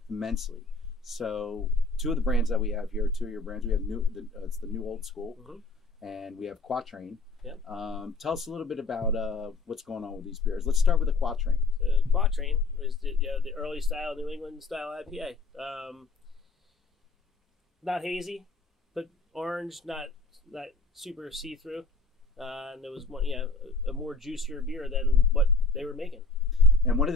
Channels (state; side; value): quieter; right; 3.3 dB